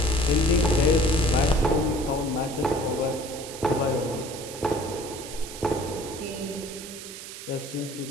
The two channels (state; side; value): noise; right; hiss, 12 dB below the sound